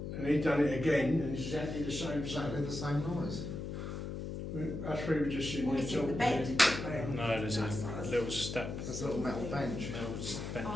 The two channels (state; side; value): noise; left; hum, 5 dB below the sound